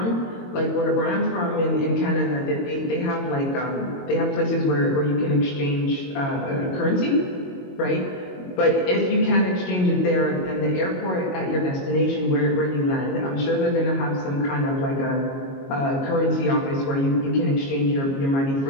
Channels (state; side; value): late; right; 22 ms